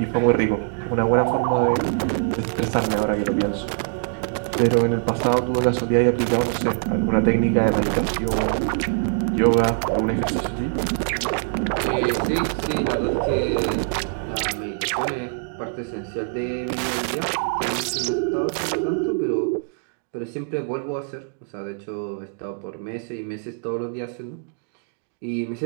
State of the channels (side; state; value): left; silent; 63 dB below the other